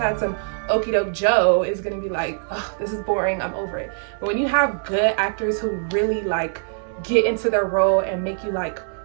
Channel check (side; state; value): left; silent; 64 dB below the other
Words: some okie doke Joe, is gonna be like, oh, this is boring, I'm over it. But when you have good actors who really like get into their role and make you like,